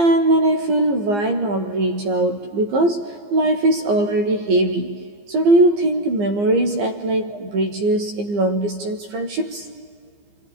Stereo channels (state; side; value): late; left; 15 ms